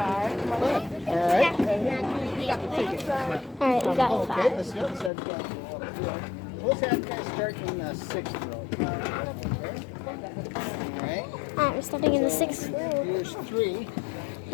Alright. Alright, we got Okay, 5. let's go. Let's have you guys start in the 6th row. Alright. Alright, we're starting in the 6th row. Here's 3.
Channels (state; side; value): drops out; right; at 5.1 s